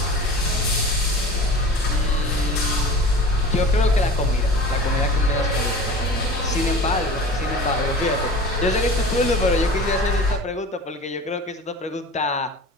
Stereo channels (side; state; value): both; normal; correlation 0.37